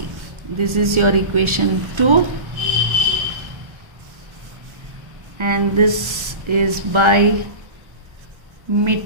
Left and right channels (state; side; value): late; left; 1.3 ms